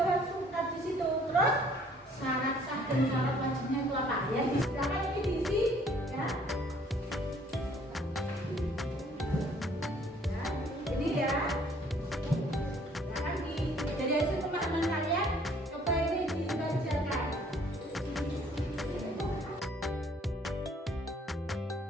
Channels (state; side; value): normal; both; correlation 0.59